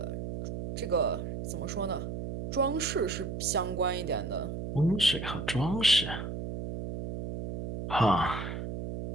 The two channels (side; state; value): right; noise; hum, 6 dB below the sound